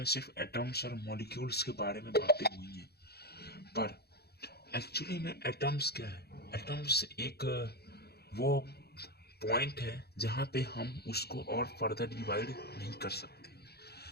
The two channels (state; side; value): late; right; 0.47 ms